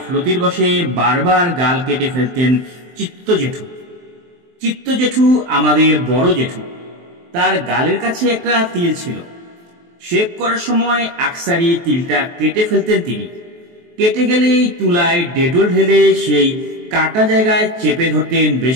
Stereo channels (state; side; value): late; left; 23 ms